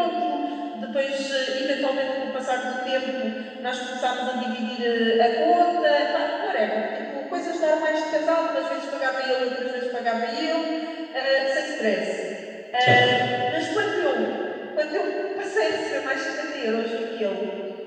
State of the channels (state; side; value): identical; both; correlation 1.00